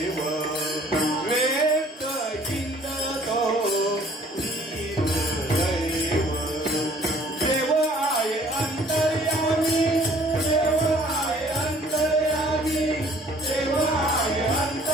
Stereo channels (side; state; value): both; normal; correlation 0.56